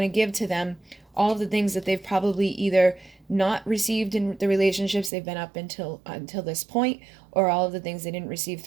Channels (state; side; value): drops out; left; at 5.1 s